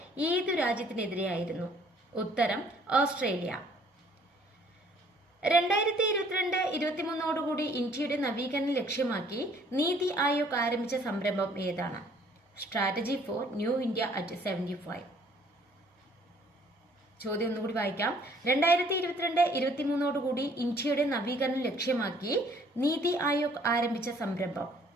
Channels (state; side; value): normal; both; correlation 0.60